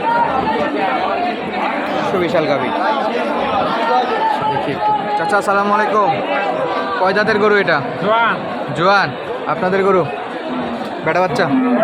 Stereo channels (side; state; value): both; identical; correlation 1.00